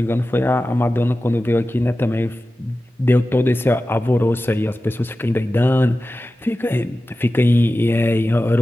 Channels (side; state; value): both; normal; correlation 0.94